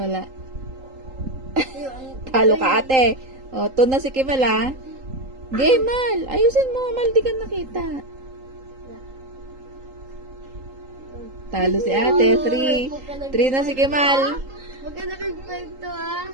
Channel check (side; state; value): left; late; 3.8 ms